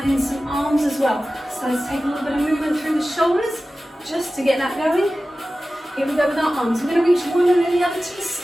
in some arms as well. So let's take a little bit of movement through the shoulders just to get that going. Here we go with our arms. We're going to reach one and then the other to the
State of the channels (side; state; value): both; normal; correlation 0.95